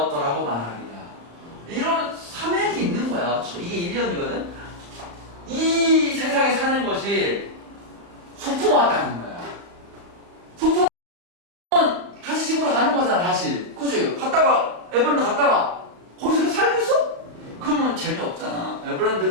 말하리라. 이런 사맥이 있는 거야. 이게 1년이거든. 이 세상에 사는 것이 소풍 왔다는 거야. 소풍은 다시 집으로 가는 거잖아. 다시 그치? 에버랜드 갔다가 거기서 계속 살고 있어? 그러면 재미없잖아.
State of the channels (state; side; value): late; left; 35 ms